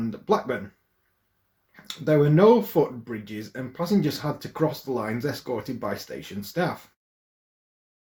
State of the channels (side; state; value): both; identical; correlation 1.00